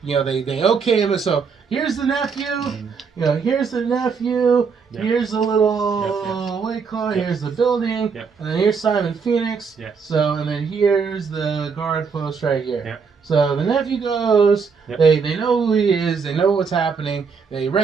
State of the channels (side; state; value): left; quieter; 5.6 dB